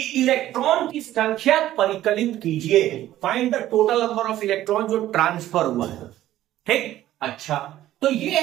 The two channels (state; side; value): quieter; left; 13.7 dB